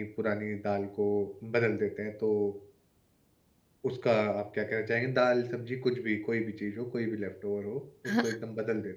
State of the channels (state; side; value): identical; both; correlation 1.00